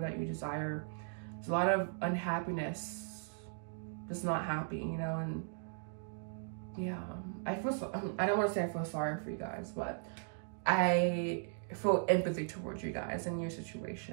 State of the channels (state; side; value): silent; left; digital silence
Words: that you desire. There's a lot of unhappiness, just not happy, you know, and yeah, I don't want to say I feel sorry for you guys, but I feel empathy towards you guys and your